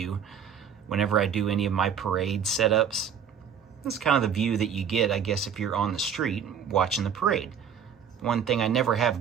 whenever I do any of my parade setups. It's kind of the view that you get, I guess, if you're on the street watching the parade. One thing I never have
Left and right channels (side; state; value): left; quieter; 7.6 dB